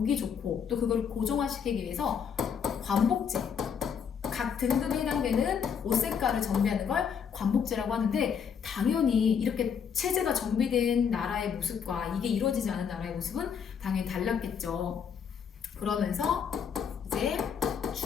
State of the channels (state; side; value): quieter; right; 7.2 dB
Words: 좋고 또 그걸 고정화시키기 위해서 관복제, 각 등급에 해당되는 옷 색깔을 정비하는 걸 관복제라고 하는데 당연히 이렇게 체제가 정비된 나라의 모습과 이게 이루어지지 않은 나라의 모습은 당연히 달랐겠죠. 그러면서 이제